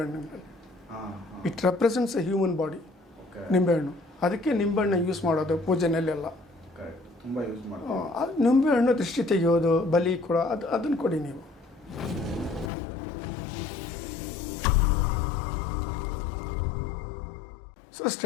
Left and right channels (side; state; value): right; drops out; at 12.7 s